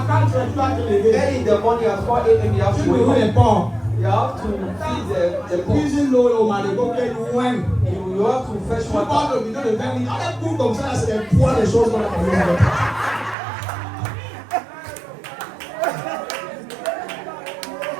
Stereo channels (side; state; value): left; drops out; at 13.4 s